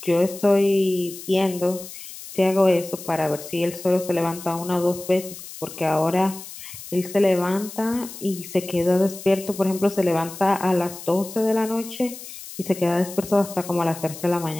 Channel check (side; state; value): left; noise; hiss, 13 dB below the sound